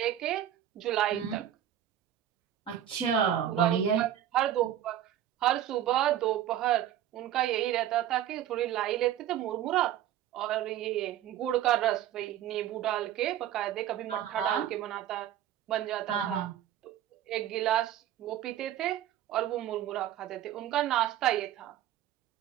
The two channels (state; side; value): quieter; left; 11.4 dB